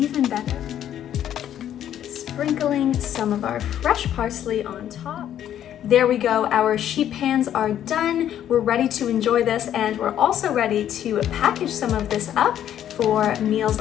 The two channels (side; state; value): right; quieter; 10.7 dB